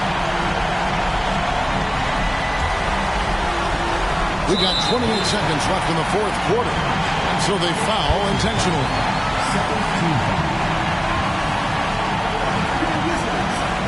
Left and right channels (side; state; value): both; identical; correlation 1.00